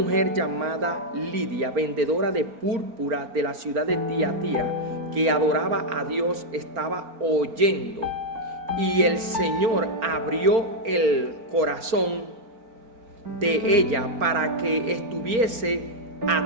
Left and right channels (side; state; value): left; late; 4.4 ms